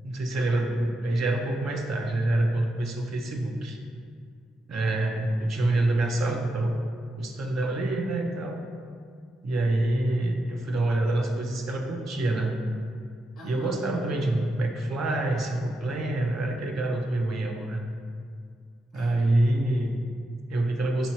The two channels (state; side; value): normal; both; correlation 0.86